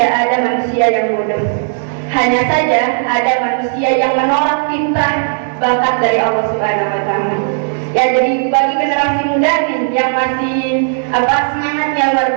ada manusia yang bodoh. Hanya saja ada manusia yang menolak fitrah bakat dari Allah Subhanahu wa taala. Ya, jadi bagi generasi muda nih yang masih semangatnya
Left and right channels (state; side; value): silent; left; digital silence